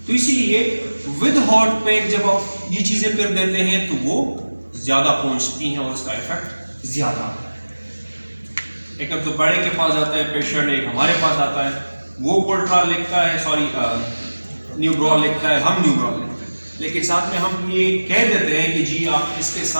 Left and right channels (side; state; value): both; inverted; correlation -1.00